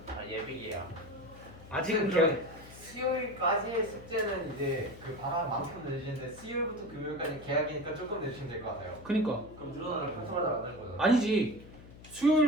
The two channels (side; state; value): left; noise; hum, 18 dB below the sound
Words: 예비예요. 아직은 계약. 수요일까지의 숙제는 이제 그 방학만큼 내주시는데 수요일부터 금요일까지 계약이니까 조금 내주시면 될 것 같아요. 그니까 그럼 늘어나는 평소마다 안 하는 거잖아. 아니지.